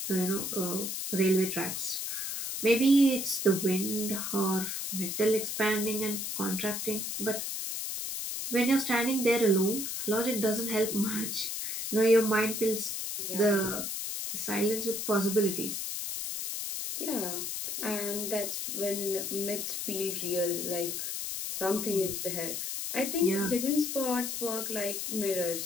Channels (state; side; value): noise; left; hiss, 3 dB below the sound